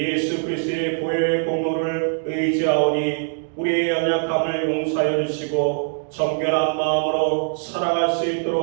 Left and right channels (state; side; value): silent; left; digital silence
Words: 그리스도의 보혈의 공로를 의지하오니 우리의 연약함을 용서하여 주시고 정결한 마음으로 살아갈 수